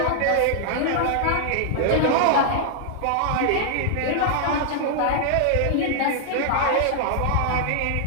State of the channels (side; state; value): both; different; correlation -0.01